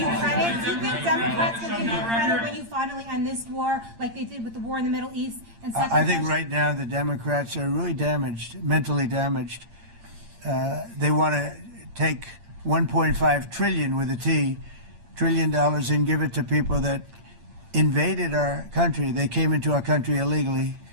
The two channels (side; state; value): left; late; 8.7 ms